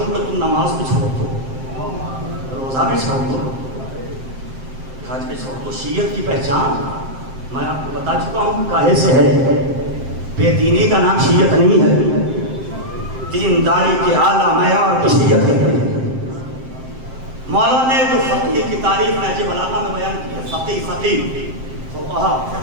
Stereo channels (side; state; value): left; late; 7.6 ms